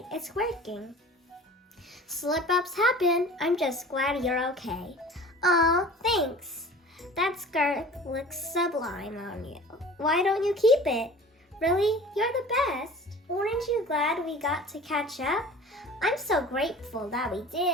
it's working. Slip-ups happen. I'm just glad you're okay. Aw, thanks. That skirt looks sublime on you. Why don't you keep it? Really? You're the best. Aren't you glad we got to catch up? I'm so grateful that we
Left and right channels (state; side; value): normal; both; correlation 0.42